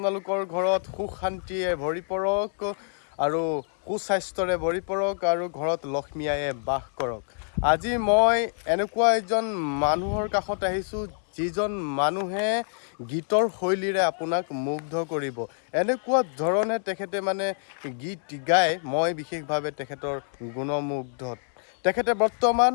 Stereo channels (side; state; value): right; silent; 60 dB below the other